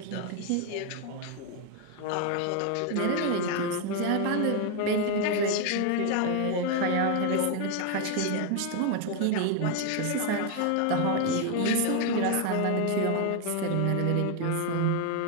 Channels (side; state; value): both; different; correlation 0.01